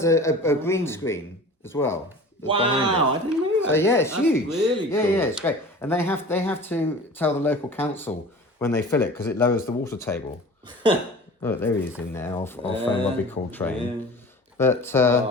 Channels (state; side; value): normal; both; correlation 0.40